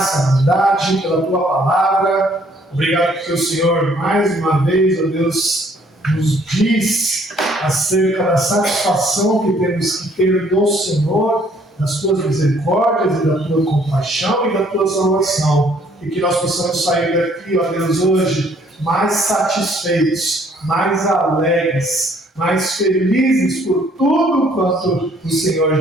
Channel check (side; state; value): both; normal; correlation 0.63